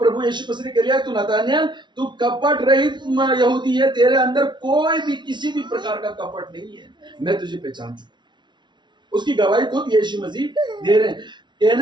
यीशु मसीह ने कह लिया, तू नतानियल, तू कपट रहित यहूदी है, तेरे अंदर कोई भी किसी भी प्रकार का कपट नहीं है, मैं तुझे पहचान चुका। उसकी गवाही खुद यीशु मसीह दे रहे हैं।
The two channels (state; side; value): late; left; 0.22 ms